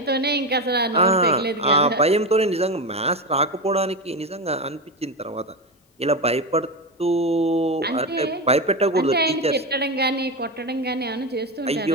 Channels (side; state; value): both; normal; correlation 0.16